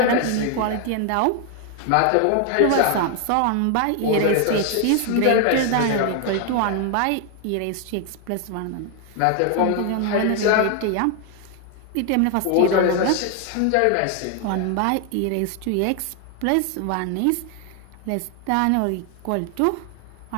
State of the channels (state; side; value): different; both; correlation 0.00